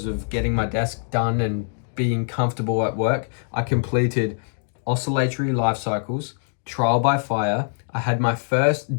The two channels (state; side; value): silent; right; digital silence